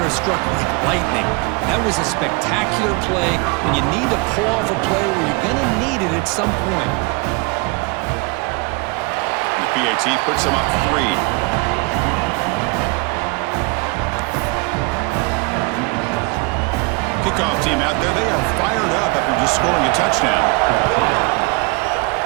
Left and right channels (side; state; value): left; quieter; 28.9 dB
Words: struck like lightning. That was a spectacular play, and you need to pull off a play where you're going to need it at some point. And the PAT puts him up 3. Kickoff team out there, they are fired up after just scoring a touchdown.